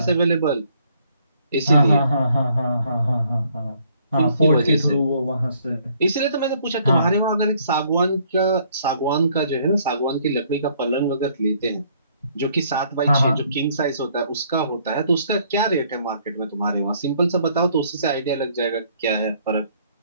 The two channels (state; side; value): inverted; both; correlation -0.64